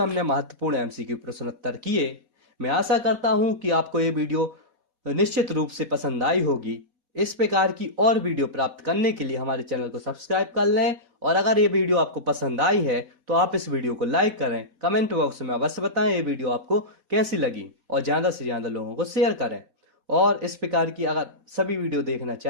महत्वपूर्ण एमसीक्यू प्रश्न उत्तर किए। मैं आशा करता हूं कि आपको ये वीडियो निश्चित रूप से पसंद आई होगी। इस प्रकार की और वीडियो प्राप्त करने के लिए हमारे चैनल को सब्सक्राइब कर लें, और अगर ये वीडियो आपको पसंद आई है तो आप इस वीडियो को लाइक करें, कमेंट बॉक्स में अवश्य बताएं ये वीडियो आपको कैसी लगी, और ज़्यादा से ज़्यादा लोगों को शेयर करें। और इस प्रकार की अगर सभी वीडियो देखना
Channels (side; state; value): left; late; 4.1 ms